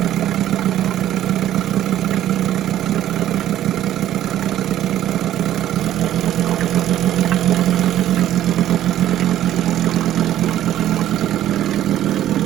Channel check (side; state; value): left; quieter; 12.4 dB